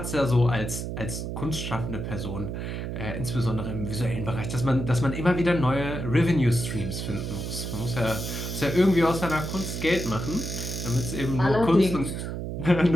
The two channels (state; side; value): noise; right; hum, 5 dB below the sound